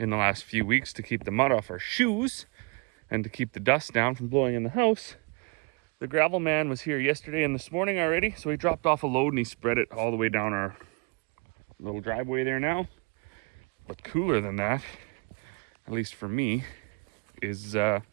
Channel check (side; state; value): left; quieter; 31.1 dB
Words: the last few weeks to keep the mud off our shoes and to keep the dust down from blowing in the house, the gravel man was here yesterday and this morning already, so he dropped off a load and he spread it all the way down our little driveway there now. But cooler than that, at least for me, is the